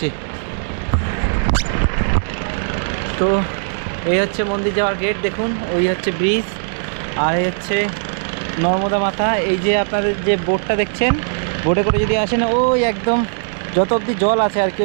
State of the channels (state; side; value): silent; left; digital silence